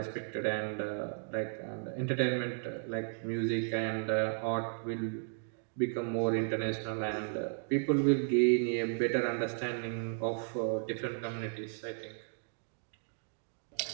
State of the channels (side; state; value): left; silent; digital silence